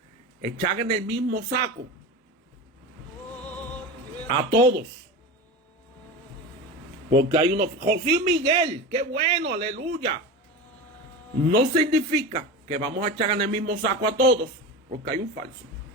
echar en el mismo saco a todos. Porque hay unos... José Miguel, qué bueno, aleluya. No significa que vamos a echar en el mismo saco a todos, porque hay un falso.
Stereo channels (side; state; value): both; normal; correlation 0.27